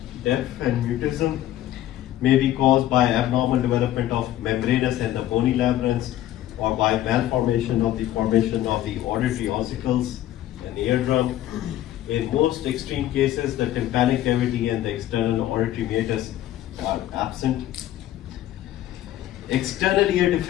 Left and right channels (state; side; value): quieter; right; 13.4 dB